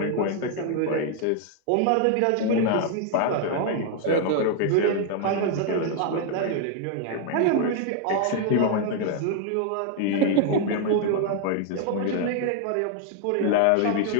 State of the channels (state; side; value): different; both; correlation 0.00